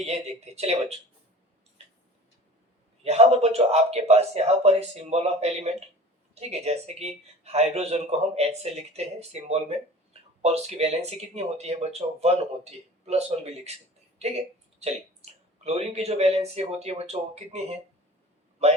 देखते हैं। चलिए बच्चों, यहाँ पर बच्चों आपके पास यहाँ पर है सिंबल ऑफ एलिमेंट। ठीक है, जैसे कि हाइड्रोजन को हम H से लिखते हैं सिंबल में और उसकी वैलेंसी कितनी होती है बच्चों? 1 होती है, +1 भी लिख सकते हैं। ठीक है, चलिए क्लोरीन की जो वैलेंसी होती है बच्चों वो कितनी है?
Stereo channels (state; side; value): normal; both; correlation 0.41